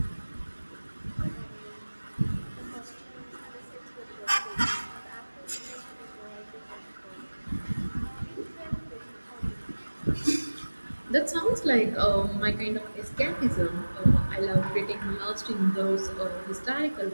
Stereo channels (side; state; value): both; inverted; correlation -1.00